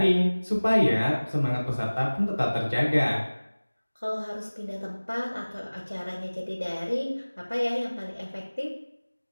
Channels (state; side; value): inverted; both; correlation -1.00